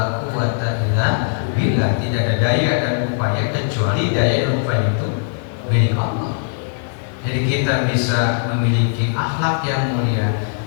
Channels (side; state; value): right; silent; digital silence